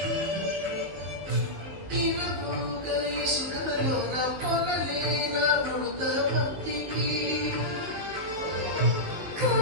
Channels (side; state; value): left; late; 19 ms